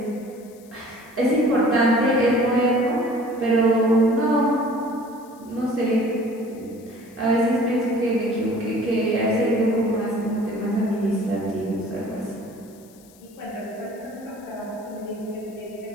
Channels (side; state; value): left; noise; hiss, 27 dB below the sound